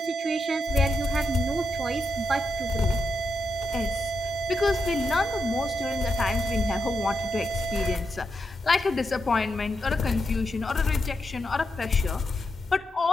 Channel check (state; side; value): normal; both; correlation 0.84